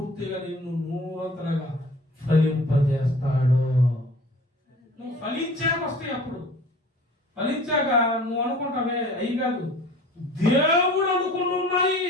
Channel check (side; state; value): both; normal; correlation 0.46